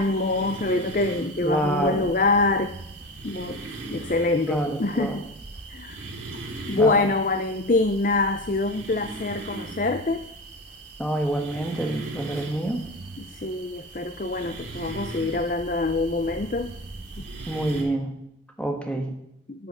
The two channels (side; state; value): both; normal; correlation 0.28